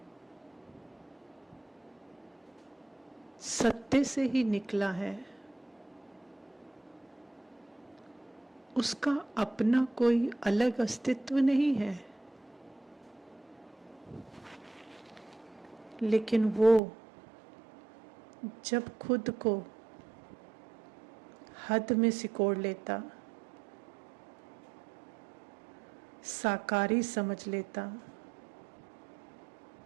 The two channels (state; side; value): drops out; left; at 16.8 s